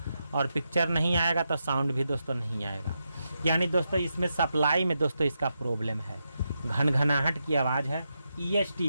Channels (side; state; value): both; inverted; correlation -0.85